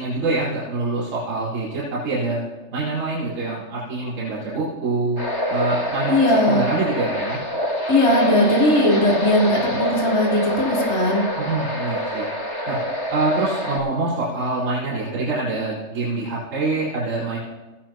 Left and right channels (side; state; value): left; late; 3.3 ms